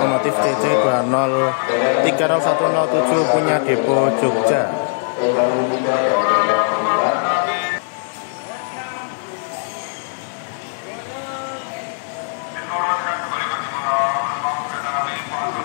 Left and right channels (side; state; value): right; silent; digital silence